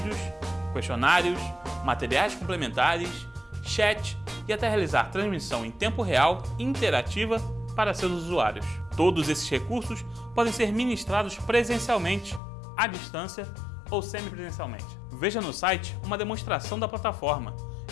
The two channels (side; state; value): right; drops out; at 12.4 s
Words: questionários, materiais complementares, chat e até realizar transmissão em tempo real e interativa para seus usuários. Todos esses recursos podem ser ministrados presencialmente, à distância ou semipresencialmente. Veja no site uma demonstração da plataforma